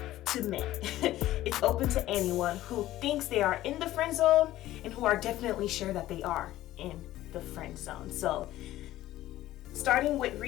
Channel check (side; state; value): right; quieter; 14.9 dB